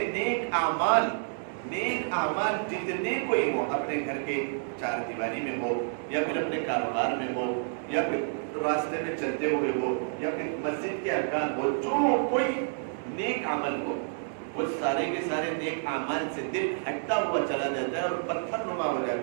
نیک اعمال جتنے کوئی ہو, اپنے گھر کے چار دیواری میں ہو, یا پھر اپنے کاروبار میں ہو, یا پھر راستے میں چلتے ہوئے ہو, یا پھر مسجد کے ارکان ہو, جو کوئی نیک عمل ہو, وہ سارے کے سارے نیک اعمال سے دل ہٹتا ہوا چلا جاتا ہے اور پتھر نما ہو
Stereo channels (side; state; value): left; silent; digital silence